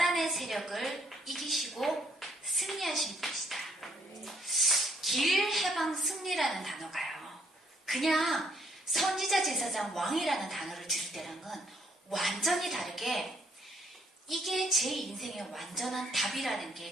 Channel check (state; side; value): normal; both; correlation 0.68